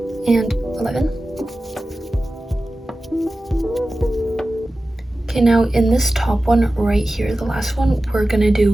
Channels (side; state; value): both; normal; correlation 0.95